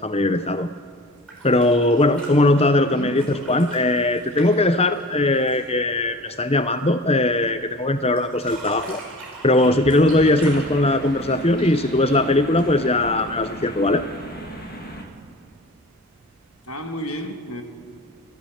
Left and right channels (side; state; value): both; normal; correlation 0.41